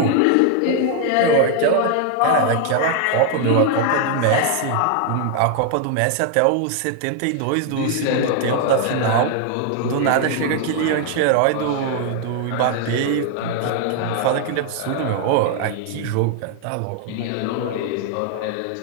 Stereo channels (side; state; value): both; different; correlation 0.00